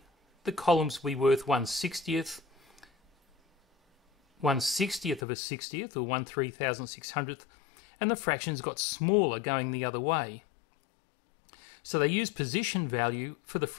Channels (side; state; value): right; drops out; at 5.2 s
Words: the columns will be worth 1/60th, 1/60th of a 60th, or 1/3600th, and the fractions got smaller going the other way. So they use position value for the